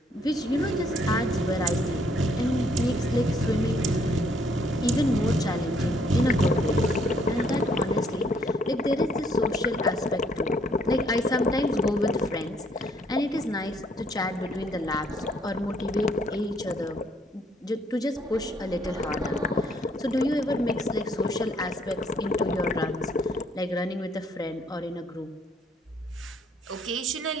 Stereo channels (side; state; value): both; normal; correlation 0.67